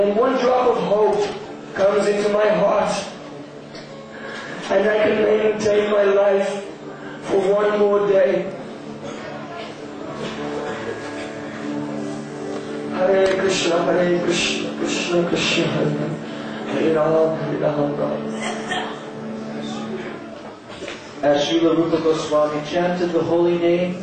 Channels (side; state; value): both; identical; correlation 1.00